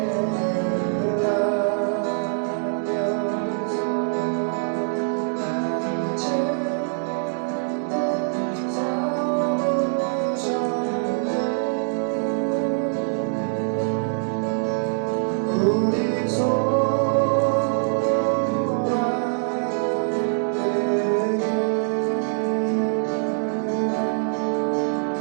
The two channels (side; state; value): left; silent; digital silence